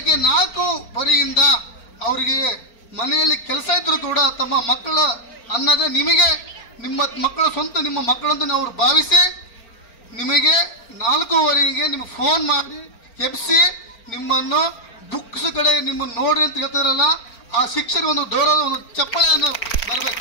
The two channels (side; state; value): right; late; 4.4 ms